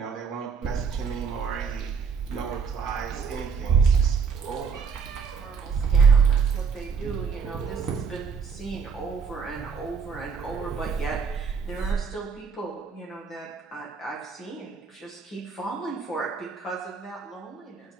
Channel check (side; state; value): left; quieter; 5.9 dB